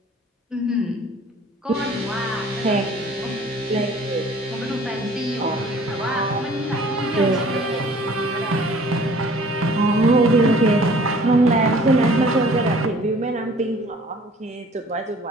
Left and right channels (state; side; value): normal; both; correlation 0.52